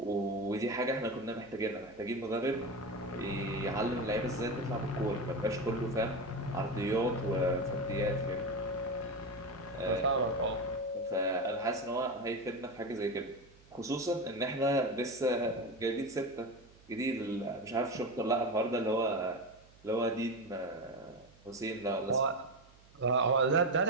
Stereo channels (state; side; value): noise; right; hum, 27 dB below the sound